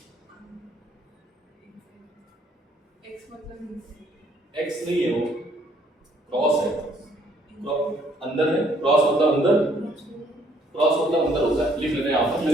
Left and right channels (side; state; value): both; normal; correlation 0.65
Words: एक्स नहीं है, वो क्रॉस है, अंदर है। क्रॉस मतलब अंदर, क्रॉस मतलब अंदर होता है। लिख लेते हैं यहाँ पर,